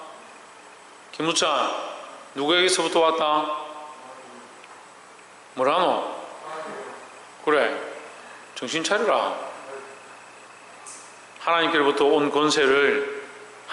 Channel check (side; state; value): both; identical; correlation 1.00